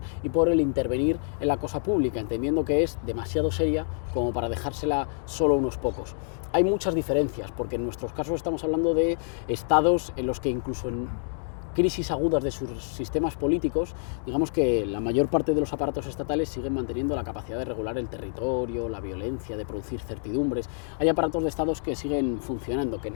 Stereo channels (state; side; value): silent; right; digital silence